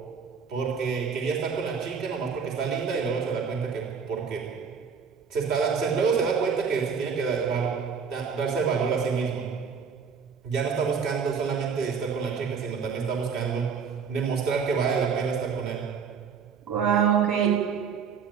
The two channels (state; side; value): quieter; left; 6.2 dB